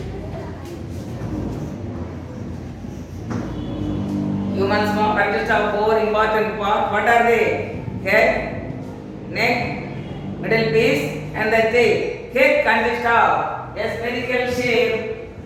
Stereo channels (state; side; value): identical; both; correlation 1.00